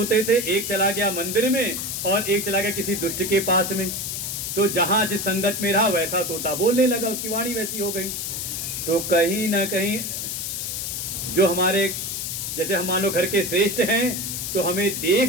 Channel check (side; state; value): left; noise; hiss, 4 dB below the sound